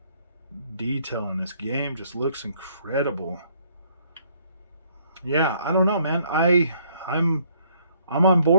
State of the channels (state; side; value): inverted; both; correlation -0.65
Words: detail in this game. Just looks incredible. Yeah, I don't know, man. I'm on